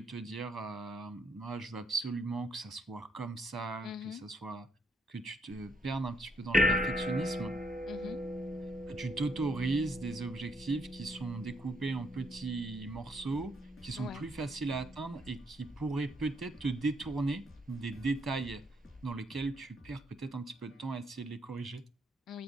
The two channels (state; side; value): normal; both; correlation 0.72